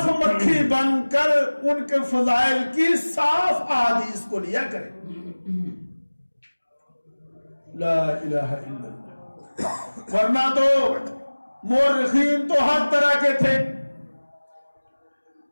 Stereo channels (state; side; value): inverted; both; correlation -1.00